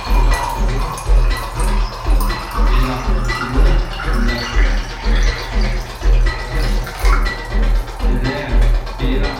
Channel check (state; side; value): identical; both; correlation 1.00